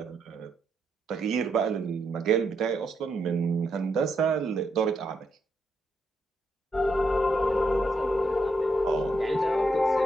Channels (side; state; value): both; normal; correlation 0.79